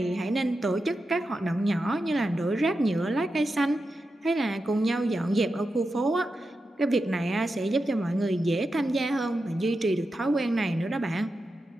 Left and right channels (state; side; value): normal; both; correlation 0.89